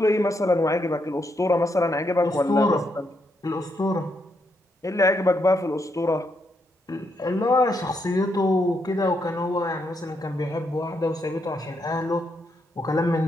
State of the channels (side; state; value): both; normal; correlation 0.79